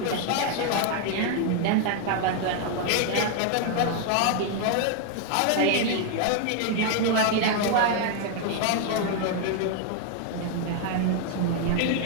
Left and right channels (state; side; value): different; both; correlation 0.00